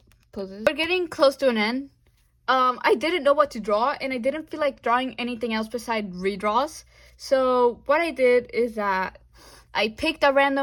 poses. We're getting close to an end. I didn't know what to draw, and I didn't feel like drawing anything else besides redraws. So what I did is that I picked a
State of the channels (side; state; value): both; identical; correlation 1.00